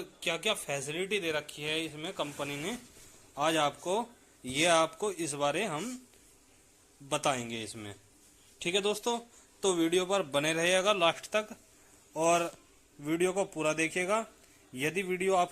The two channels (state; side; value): identical; both; correlation 1.00